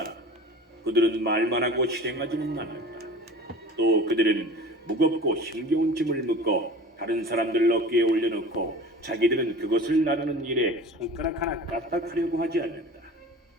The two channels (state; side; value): normal; both; correlation 0.39